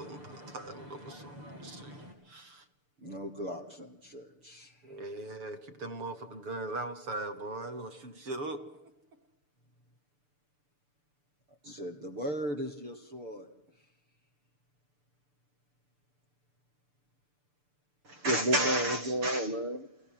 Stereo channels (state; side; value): late; left; 6.8 ms